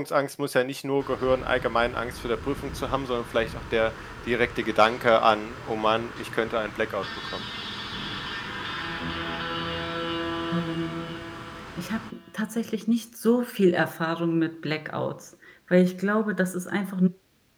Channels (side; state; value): both; identical; correlation 1.00